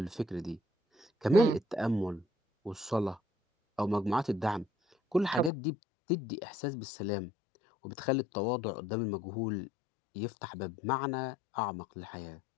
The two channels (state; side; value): drops out; right; at 5.5 s